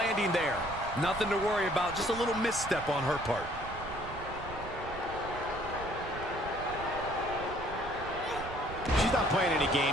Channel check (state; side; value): noise; right; rumble, 12 dB below the sound